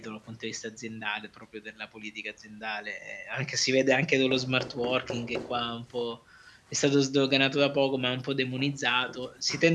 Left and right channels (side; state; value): both; identical; correlation 1.00